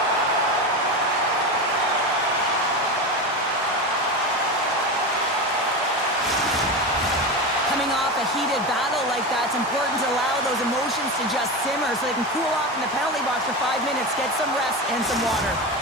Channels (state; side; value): normal; both; correlation 0.21